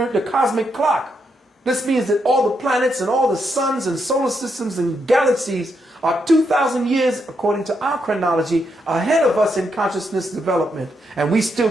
cosmic clock. This means that all the planets and all the suns and solar systems and galaxies are 2,000 years, according to our chronology, ahead of us in consciousness development. And we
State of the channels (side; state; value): both; normal; correlation 0.80